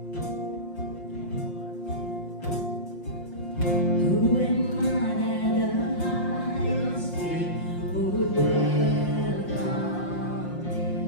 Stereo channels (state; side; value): late; right; 5.6 ms